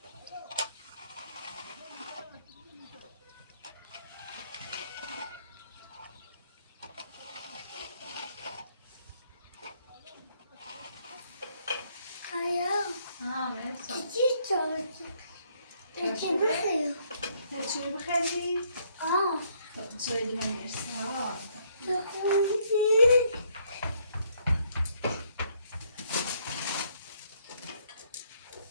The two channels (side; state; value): both; inverted; correlation -0.68